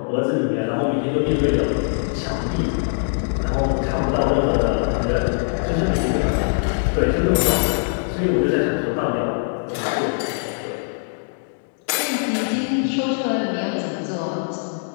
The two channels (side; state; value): right; silent; digital silence